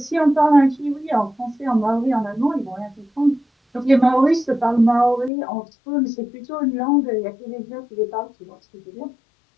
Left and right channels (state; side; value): drops out; right; at 5.3 s